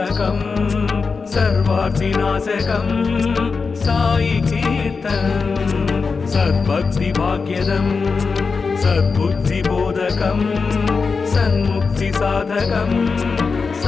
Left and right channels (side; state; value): right; quieter; 4.8 dB